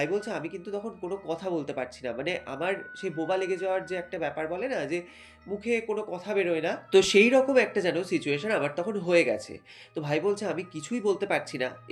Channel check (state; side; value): identical; both; correlation 1.00